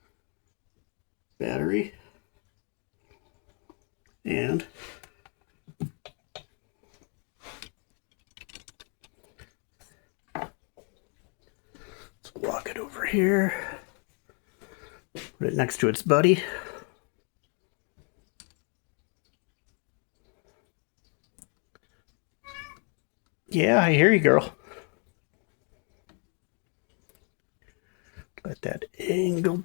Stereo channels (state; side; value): quieter; right; 37.4 dB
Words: battery. And let's walk it over here. Put it next to its buddy. Yeah, I hear you, girl. Let that angle